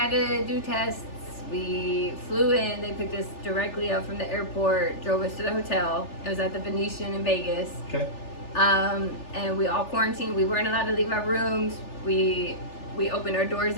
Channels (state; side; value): late; right; 3.4 ms